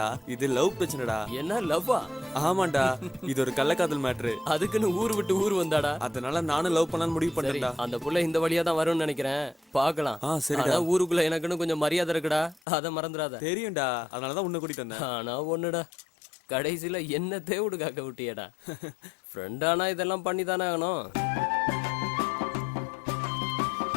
இது லவ் பிரச்சனைடா. என்ன லவ்வா? ஆமாண்டா, இது ஒரு கள்ளக்காதல் மேட்ரு. அதுக்குன்னு ஊர் விட்டு ஊர் வந்தாடா? அதனால நானும் லவ் பண்ணலாம்னு முடிவு சரி, பண்ணேன்டா. அந்த புள்ள இந்த வழியா தான் வரும்னு நினைக்கிறேன். பாக்கலாம். சரிடா. ஆனா ஊருக்குள்ள எனக்குன்னு கொஞ்சம் மரியாதை இருக்குடா, அத மறந்துடாத. தெரியும்டா, அதனாலதான் உன்னை கூட்டிட்டு வந்தேன். ஆனா ஒண்ணுடா, கடைசியில என்ன தேவுடு காக்க விட்டியடா. ஃப்ரெண்டானா இதெல்லாம் பண்ணி தானே ஆகணும்.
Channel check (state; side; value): drops out; right; at 12.6 s